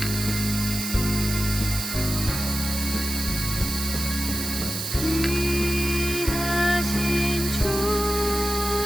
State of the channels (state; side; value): noise; right; hiss, 4 dB below the sound